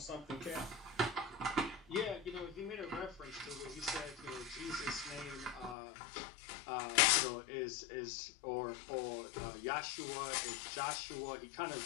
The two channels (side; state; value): right; drops out; at 5.8 s